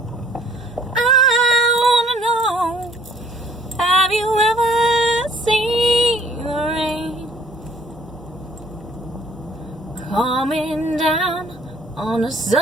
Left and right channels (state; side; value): normal; both; correlation 0.59